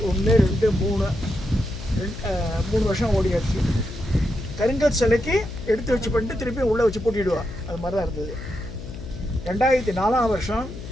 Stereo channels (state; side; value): noise; left; hum, 11 dB below the sound